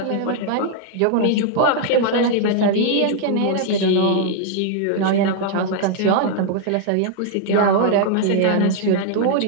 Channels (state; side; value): different; both; correlation 0.00